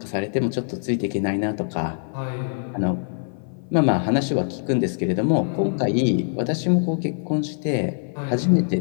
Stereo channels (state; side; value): silent; right; 57 dB below the other